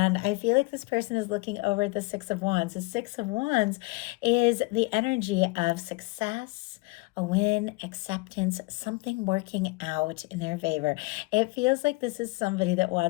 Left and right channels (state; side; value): quieter; right; 25.6 dB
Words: I feel like this person is looking over at the Six of Wands. The Six of Wands is the energy of success, a win, acceptance, something working out in their favor. It feels like this is somebody that